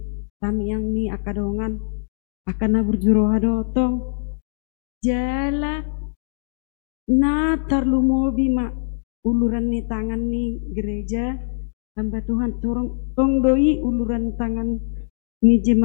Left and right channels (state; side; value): silent; right; digital silence